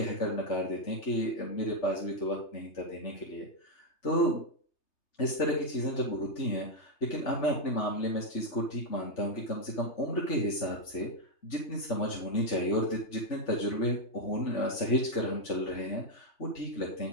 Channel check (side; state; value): right; late; 3.3 ms